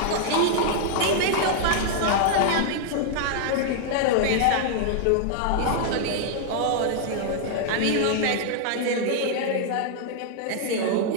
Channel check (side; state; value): both; different; correlation -0.01